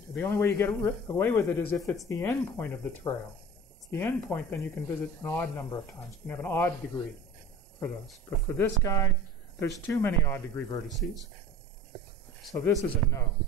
The only way you get away with it is if it's the endpoint of the trail. If it's the endpoint, then you can visit an odd number of times. You can have an odd degree for those. But for this guy, there's too many odd degree vertices. So this is a no.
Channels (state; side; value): normal; both; correlation 0.38